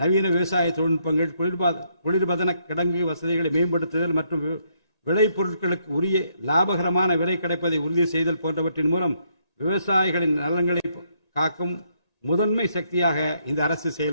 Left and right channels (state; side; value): late; right; 1.8 ms